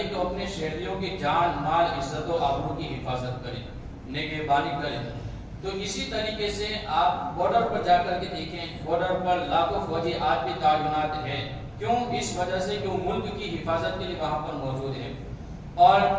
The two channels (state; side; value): identical; both; correlation 1.00